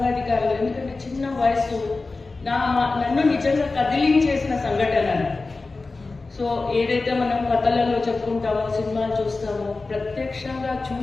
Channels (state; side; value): quieter; right; 3.6 dB